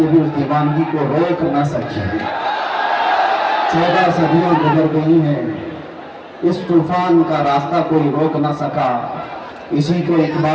بھی اس دیوانگی کو روک نہ سکی۔ 14 صدیاں گزر گئی ہیں، اس طوفان کا راستہ کوئی روک نہ سکا۔ اسی کو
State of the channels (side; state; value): both; identical; correlation 1.00